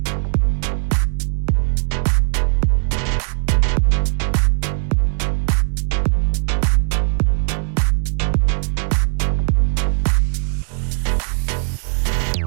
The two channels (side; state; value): left; silent; 57 dB below the other